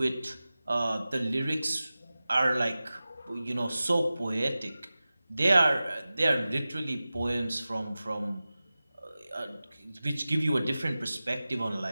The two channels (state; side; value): inverted; both; correlation -0.96